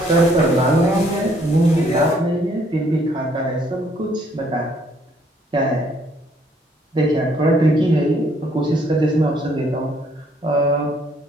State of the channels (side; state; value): both; normal; correlation 0.65